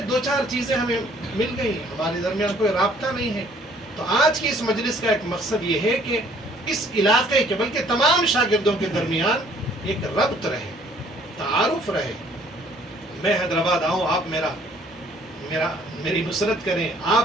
2-4 چیزیں ہمیں مل گئی، ہمارے درمیان کوئی رابطہ نہیں ہے. تو آج کی اس مجلس کا ایک مقصد یہ ہے کہ اس علاقے کے بلکہ تمام شاگردوں کے درمیان ایک ربط رہے، تعارف رہے. میں حیدرآباد آؤں، آپ میری نصرت کریں،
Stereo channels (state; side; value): normal; both; correlation 0.59